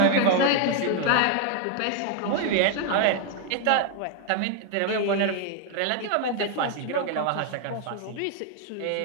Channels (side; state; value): both; different; correlation 0.01